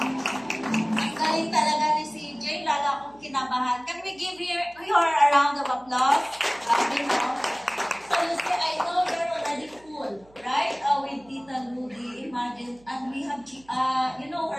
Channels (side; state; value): right; noise; hum, 28 dB below the sound